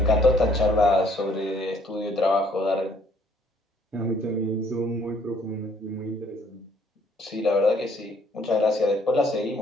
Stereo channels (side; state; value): both; normal; correlation 0.62